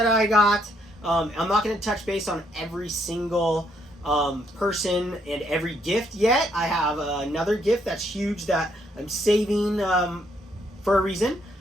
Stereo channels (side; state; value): both; normal; correlation 0.72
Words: I got. I'm not going to touch base on every single person and every gift yet. I have another gift that's huge that I'm saving for a reason.